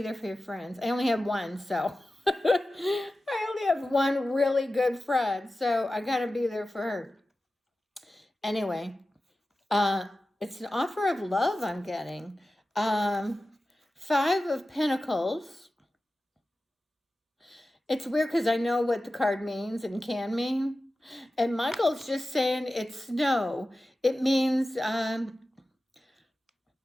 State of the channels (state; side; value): normal; both; correlation 0.94